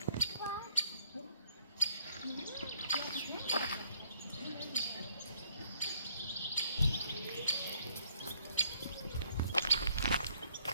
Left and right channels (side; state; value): both; inverted; correlation -0.62